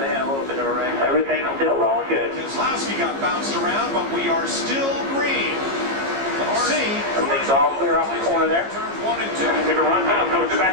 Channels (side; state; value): left; late; 15 ms